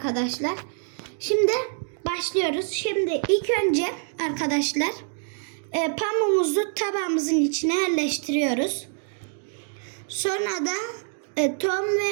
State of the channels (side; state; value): left; silent; 59 dB below the other